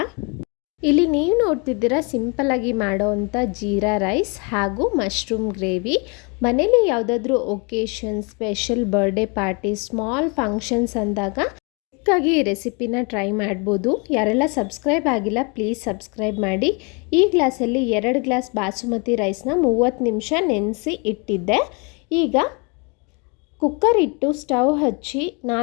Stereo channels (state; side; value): quieter; right; 32.2 dB